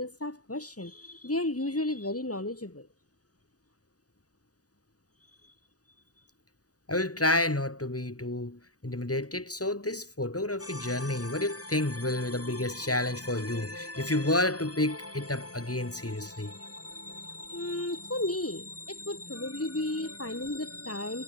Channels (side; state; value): right; late; 0.67 ms